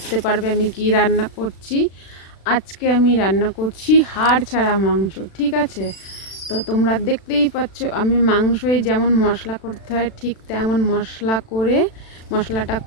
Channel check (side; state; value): right; late; 36 ms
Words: পারবে আমি কি রান্না করছি। আজকে আমি রান্না করছি হাড় ছাড়া মাংস, ঠিক আছে? তো তোমরা দেখতেই পাচ্ছ আমি মাংসই যেমন মশলা করতে হয় ঠিক তেমন মশলা করে মশলাটা